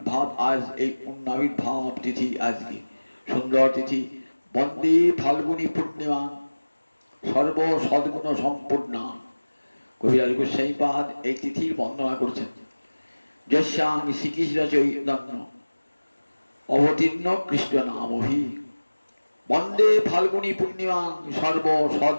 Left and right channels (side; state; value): both; inverted; correlation -1.00